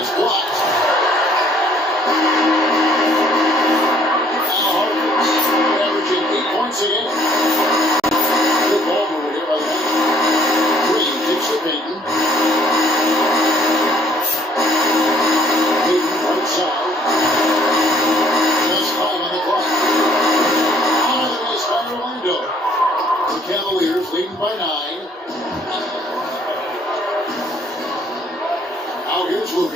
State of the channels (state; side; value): normal; both; correlation 0.62